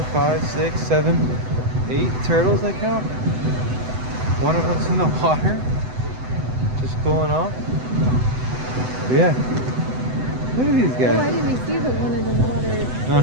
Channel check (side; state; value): left; late; 7.9 ms